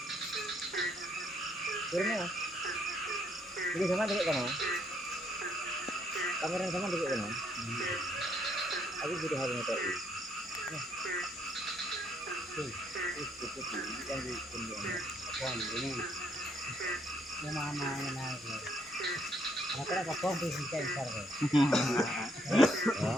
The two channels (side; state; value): both; normal; correlation 0.70